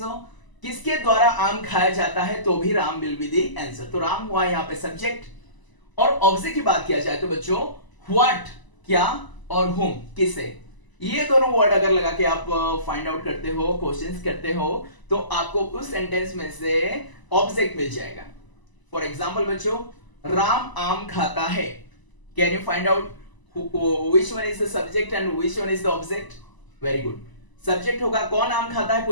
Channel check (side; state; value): right; late; 1.0 ms